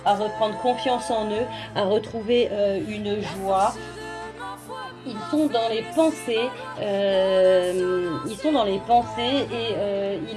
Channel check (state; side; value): identical; both; correlation 1.00